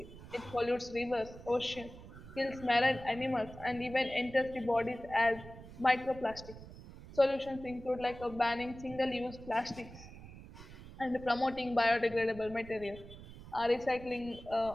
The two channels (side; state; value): right; noise; rumble, 16 dB below the sound